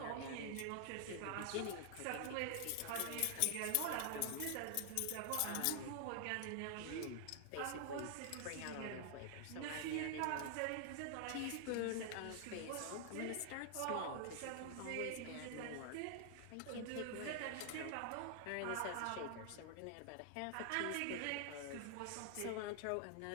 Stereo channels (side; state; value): both; different; correlation 0.00